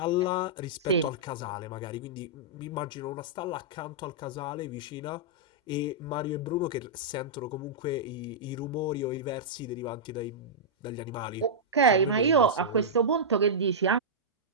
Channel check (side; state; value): both; normal; correlation -0.12